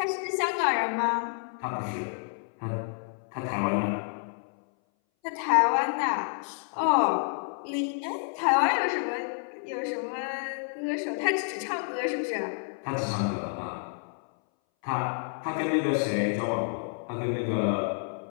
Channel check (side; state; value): right; silent; 58 dB below the other